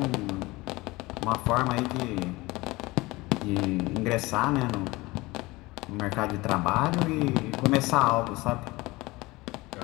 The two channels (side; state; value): right; quieter; 21.5 dB